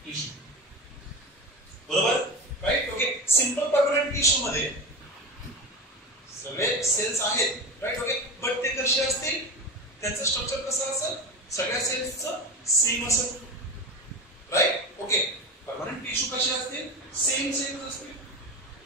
टिश्यू बरोबर right okay simple permanent tissue मध्ये सगळे सेल्स आहेत राइट ओके बट ते कसे असतील त्यांचं स्ट्रक्चर कसं असेल ओके परमनंट टिश्यू कसे असतील सेम असतील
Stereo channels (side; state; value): both; normal; correlation 0.24